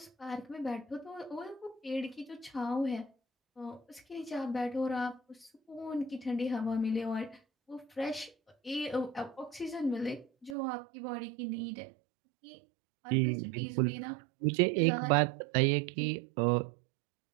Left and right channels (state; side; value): drops out; left; at 10.6 s